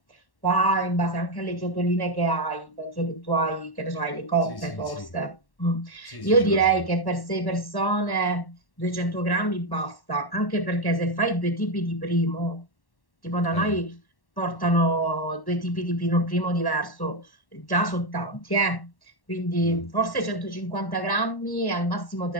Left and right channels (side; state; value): right; late; 1.1 ms